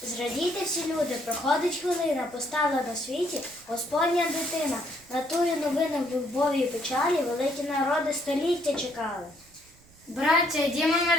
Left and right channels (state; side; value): noise; right; rumble, 27 dB below the sound